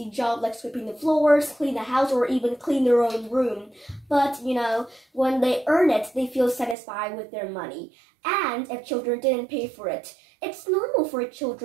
job like sweeping the floors, clean the house, or even clean their own room. But, you know, when they earn it, they feel satisfied with their money. And if children didn't pay for it, it's normal for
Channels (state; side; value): drops out; left; at 6.8 s